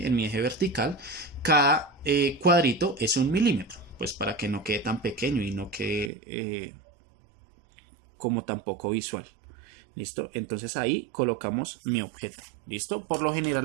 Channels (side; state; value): left; drops out; at 6.1 s